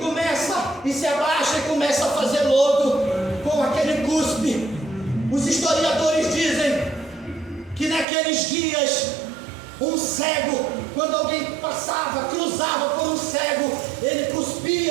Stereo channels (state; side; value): drops out; left; at 8.1 s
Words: e se abaixa e começa a fazer lodo com aquele cuspe. Os historiadores dizem que naqueles dias, um cego, quando alguém passava, cruzava por um cego, ele